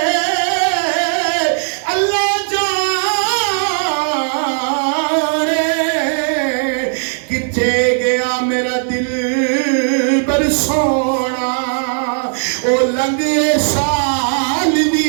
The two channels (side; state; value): left; silent; digital silence